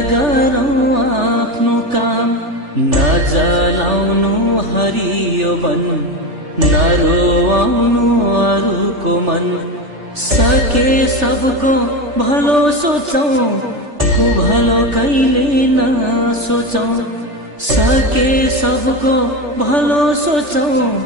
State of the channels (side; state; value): left; late; 3.4 ms